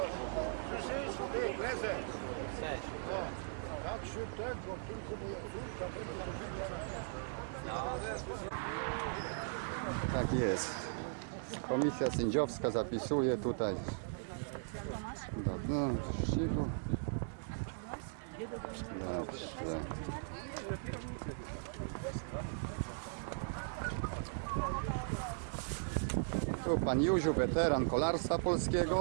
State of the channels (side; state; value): left; silent; digital silence